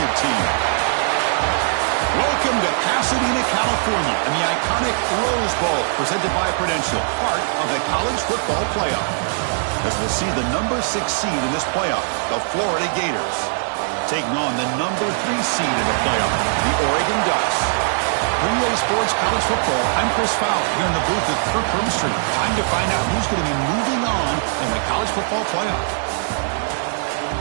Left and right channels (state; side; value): silent; left; 65 dB below the other